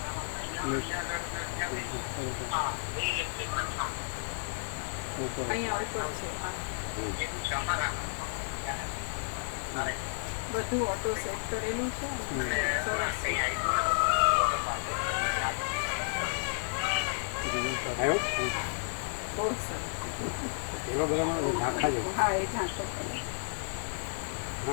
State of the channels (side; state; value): right; silent; 56 dB below the other